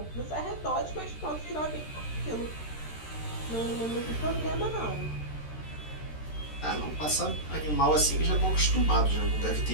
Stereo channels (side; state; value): right; late; 13 ms